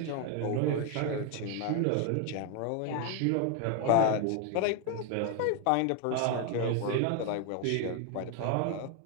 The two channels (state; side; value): different; both; correlation 0.01